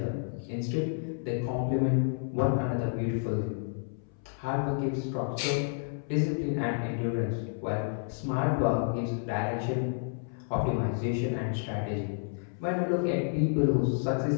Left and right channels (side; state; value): right; silent; 58 dB below the other